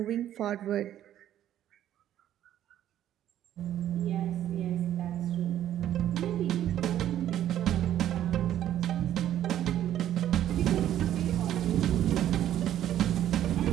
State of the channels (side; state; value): left; quieter; 11.6 dB